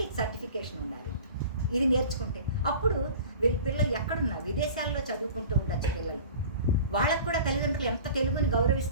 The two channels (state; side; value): inverted; both; correlation -0.40